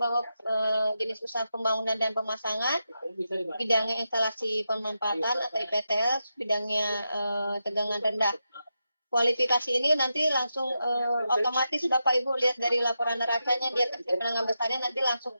jenis usaha pembangunan dan pemasangan, bidangnya instalasi pemanfaatan atau IPTL, bidangnya tegangan rendah. Kualifikasi ini nanti langsung otomatis Bapak Ibu lihat dari laporan neracanya dia kecil menengah besarnya nanti langsung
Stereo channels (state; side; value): inverted; both; correlation -0.87